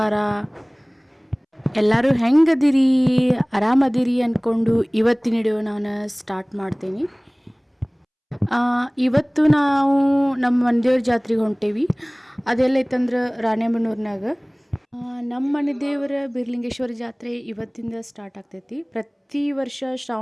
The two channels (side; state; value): both; identical; correlation 1.00